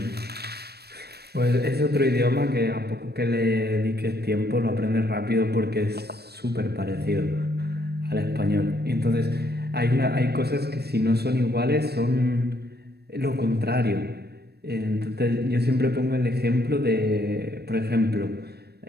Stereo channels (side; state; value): left; late; 0.47 ms